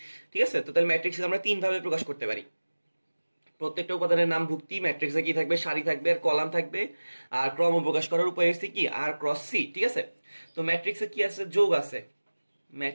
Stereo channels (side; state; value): both; inverted; correlation -1.00